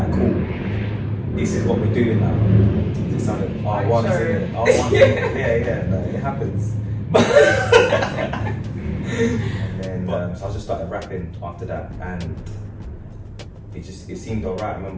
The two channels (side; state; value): both; identical; correlation 1.00